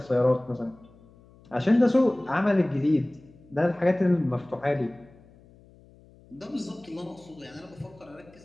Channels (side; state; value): left; noise; hum, 26 dB below the sound